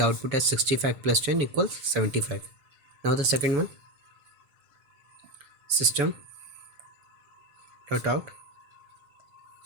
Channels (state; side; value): late; left; 7.0 ms